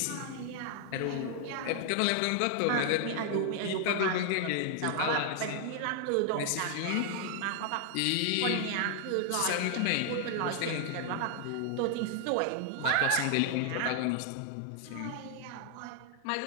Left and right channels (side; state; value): both; different; correlation 0.00